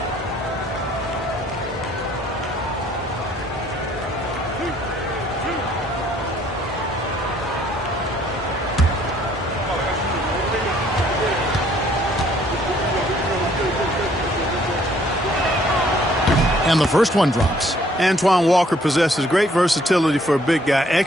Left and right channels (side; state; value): both; normal; correlation 0.62